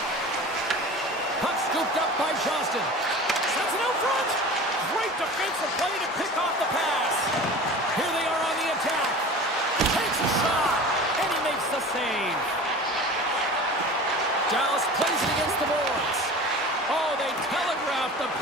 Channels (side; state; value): both; normal; correlation 0.37